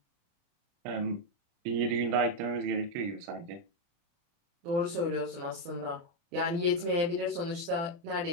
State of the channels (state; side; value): late; left; 29 ms